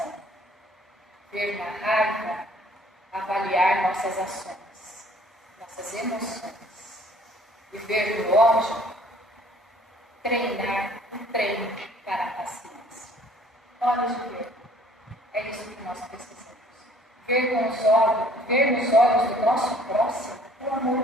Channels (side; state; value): both; normal; correlation 0.56